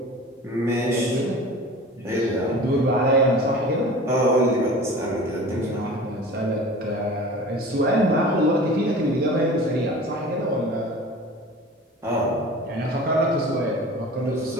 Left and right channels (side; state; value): both; normal; correlation 0.40